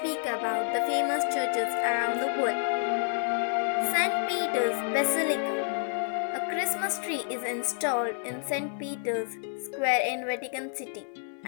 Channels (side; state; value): right; silent; 56 dB below the other